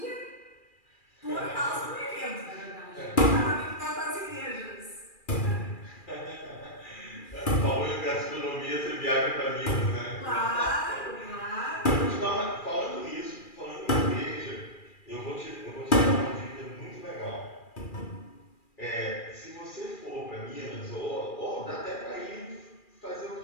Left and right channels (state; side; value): late; right; 2.4 ms